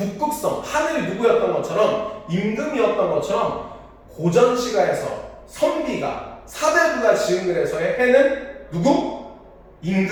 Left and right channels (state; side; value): identical; both; correlation 1.00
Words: 하늘이 누구였던 것처럼 임금이었던 것처럼 고전시가에서 선비가 사대부가 지은 글에서의 해는 누구?